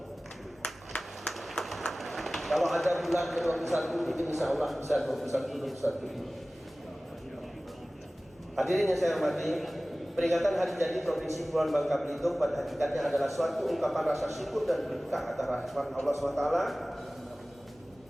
Kalau ada bulan ke-21, itu insya Allah bisa 21 ini. Hadirin yang saya hormati, peringatan Hari Jadi Provinsi Kepulauan Bangka Belitung pada hakikatnya adalah suatu ungkapan rasa syukur dan berkah atas rahmat Allah SWT.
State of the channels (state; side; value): normal; both; correlation 0.97